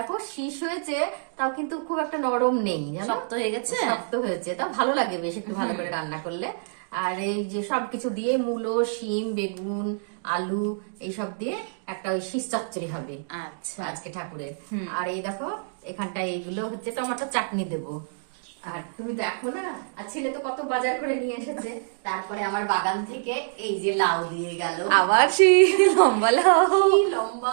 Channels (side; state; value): left; silent; digital silence